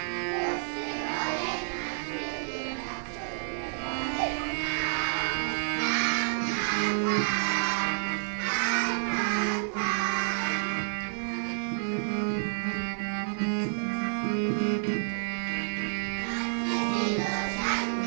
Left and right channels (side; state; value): left; silent; digital silence